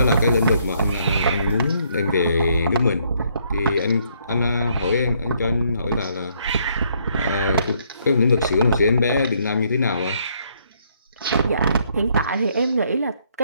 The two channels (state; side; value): inverted; both; correlation -0.70